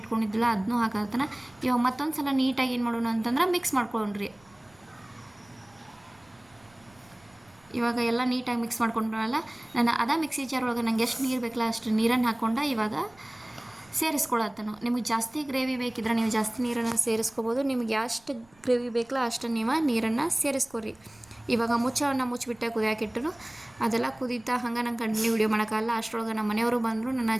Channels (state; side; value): noise; right; rumble, 30 dB below the sound